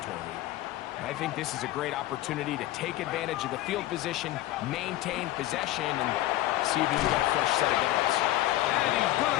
I think this is a great opportunity to take advantage of the field position, maintain possession, and see if you can get a fresh set of downs. And he's going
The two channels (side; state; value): right; quieter; 15.5 dB